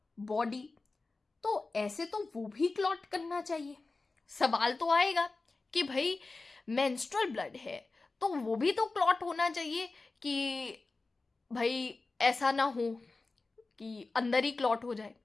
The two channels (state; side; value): quieter; right; 3.6 dB